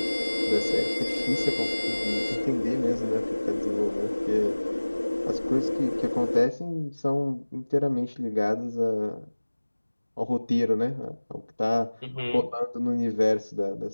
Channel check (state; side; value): inverted; both; correlation -1.00